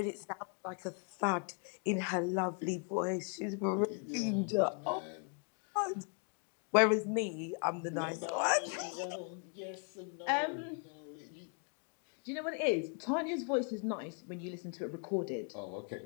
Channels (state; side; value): quieter; right; 39.2 dB